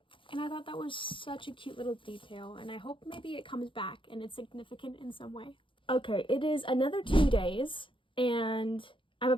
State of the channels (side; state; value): right; late; 0.25 ms